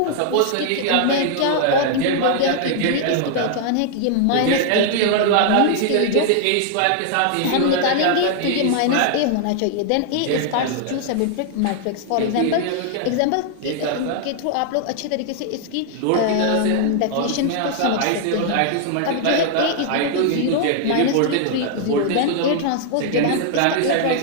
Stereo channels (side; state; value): both; different; correlation 0.00